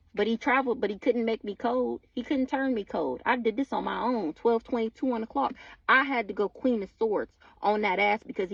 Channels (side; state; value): both; identical; correlation 1.00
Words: But he traveled, but he couldn't make me cold. He couldn't turn me cold. I did this on my own. 12:22 on the clock. I had to go Queen of Swords on that ass because